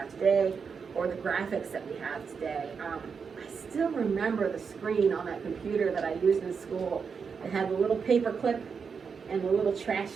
today or the graphics that we have today. I still remember the screen on that computer that I used in school. It had the little paper clip and the little trash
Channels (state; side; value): quieter; left; 5.9 dB